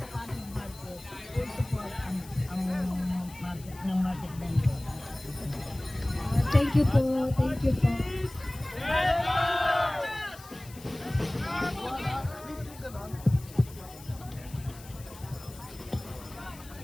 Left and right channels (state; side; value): noise; left; hiss, 19 dB below the sound